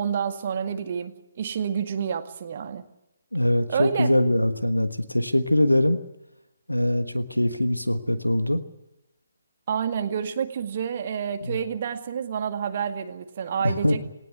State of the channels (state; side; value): inverted; both; correlation -0.89